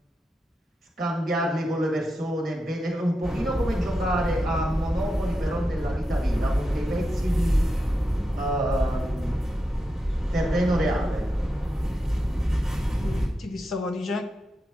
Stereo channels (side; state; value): both; normal; correlation 0.88